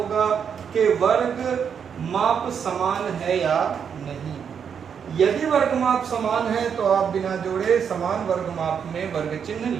कि वर्ग माप समान है या नहीं। यदि वर्ग माप समान है तो आप बिना जोड़े समान वर्ग माप में वर्ग चिन्ह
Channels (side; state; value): left; quieter; 7.3 dB